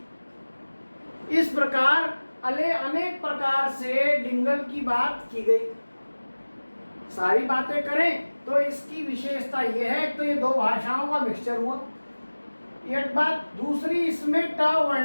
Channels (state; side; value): inverted; both; correlation -1.00